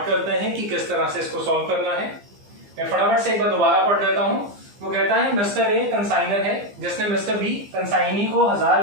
करते हैं कि किस तरह से इसको सॉल्व करना है. मैं फटाफट से एक बार दोबारा पढ़ देता हूं. वो कहता है मिस्टर ए कंसाइनर है जिसने मिस्टर बी कंसाइनी को 1000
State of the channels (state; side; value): late; left; 15 ms